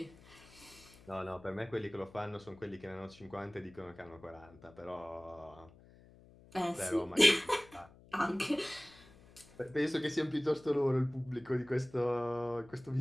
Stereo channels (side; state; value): left; noise; hum, 23 dB below the sound